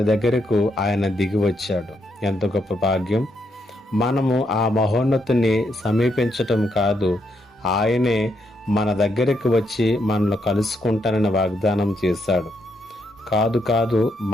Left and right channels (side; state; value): both; normal; correlation 0.78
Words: దగ్గరకు ఆయన దిగి వచ్చాడు. ఎంత గొప్ప భాగ్యం! మనము ఆ మహోన్నతుని సమీపించటం కాదు, ఆయనే మన దగ్గరికి వచ్చి మనల్ని కలుసుకుంటానని వాగ్దానం చేశాడు. కాదు